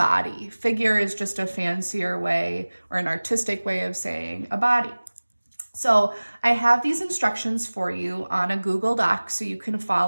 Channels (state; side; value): inverted; both; correlation -1.00